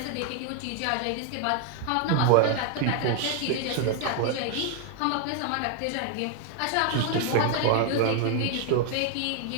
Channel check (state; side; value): different; both; correlation 0.00